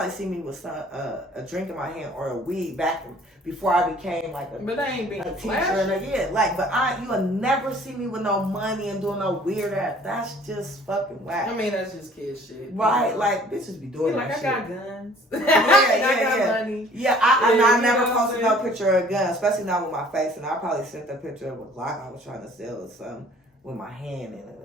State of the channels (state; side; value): normal; both; correlation 0.53